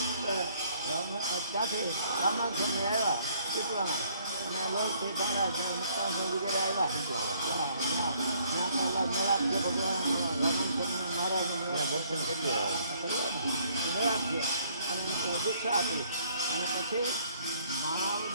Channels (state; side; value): inverted; both; correlation -0.64